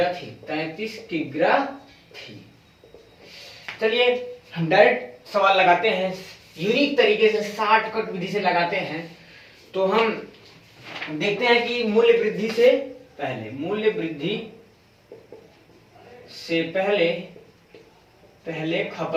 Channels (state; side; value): identical; both; correlation 1.00